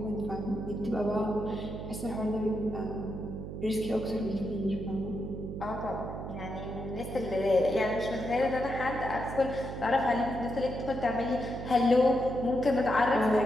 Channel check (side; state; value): right; noise; hum, 8 dB below the sound